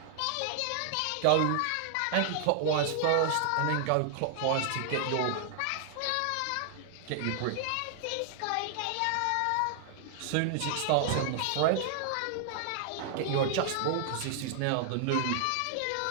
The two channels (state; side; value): different; both; correlation 0.00